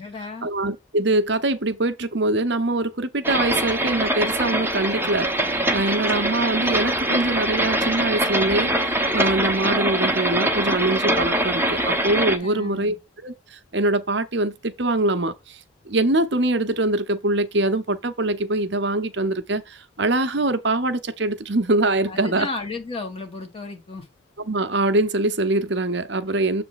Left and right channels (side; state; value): both; normal; correlation 0.12